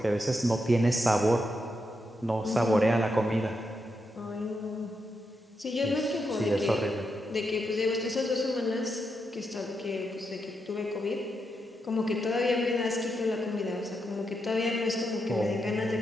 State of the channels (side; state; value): both; normal; correlation 0.83